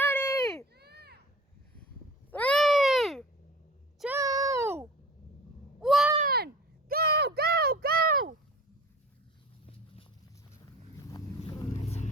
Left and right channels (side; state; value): both; normal; correlation 0.41